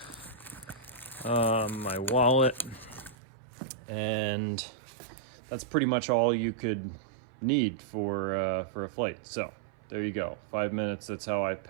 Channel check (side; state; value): left; drops out; at 3.2 s